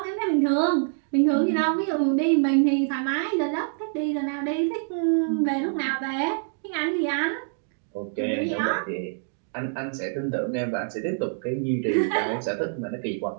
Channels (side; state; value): left; silent; digital silence